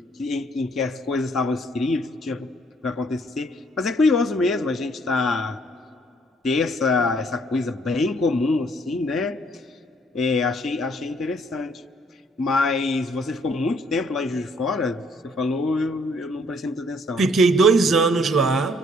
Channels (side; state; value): both; normal; correlation 0.64